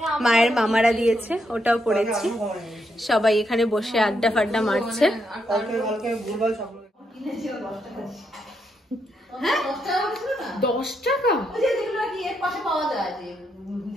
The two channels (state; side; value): normal; both; correlation 0.79